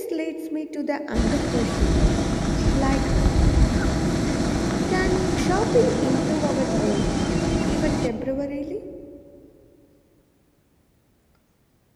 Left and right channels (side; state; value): both; identical; correlation 1.00